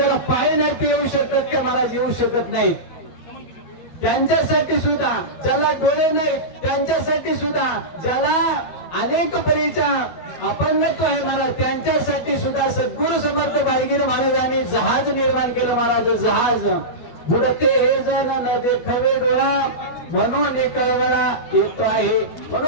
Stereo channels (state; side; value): late; right; 12 ms